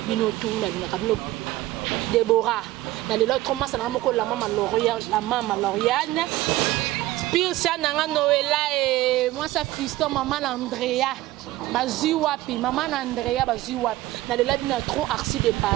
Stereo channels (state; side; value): quieter; left; 16.9 dB